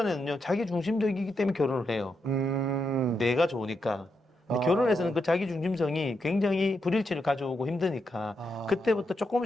자기 중심적이기 때문에 결혼을 해요. 내가 좋으니까. 근데 결혼해서는 그 자기 중심성이 굉장히 불일치를 가져오고 힘드니까 그때부터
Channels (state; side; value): normal; both; correlation 0.83